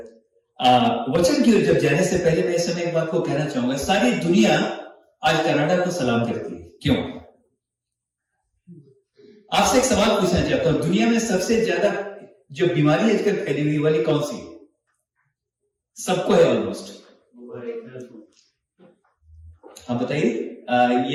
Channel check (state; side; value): identical; both; correlation 1.00